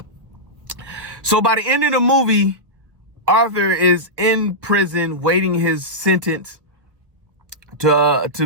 So by the end of the movie, Arthur is in prison waiting his sentence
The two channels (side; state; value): left; late; 1.3 ms